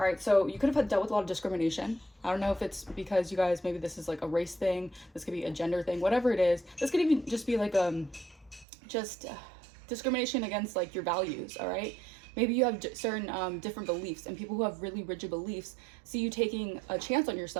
right, so you could have dealt with a lot of discrimination. I don't know if it's because you guys, maybe this is like a race thing. This could be a gender thing, whatever it is. This could even just be like discrimination against like your values. All right, Maybe you have certain different beliefs, and people who have really rigid beliefs see you taking a chance on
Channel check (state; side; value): drops out; left; at 8.7 s